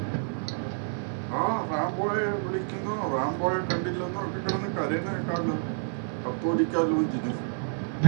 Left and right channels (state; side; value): silent; left; 58 dB below the other